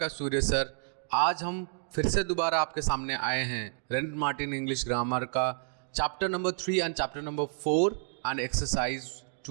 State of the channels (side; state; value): left; silent; digital silence